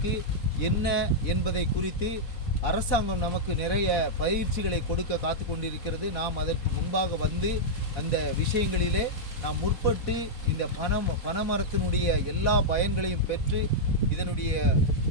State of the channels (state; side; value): late; right; 4.1 ms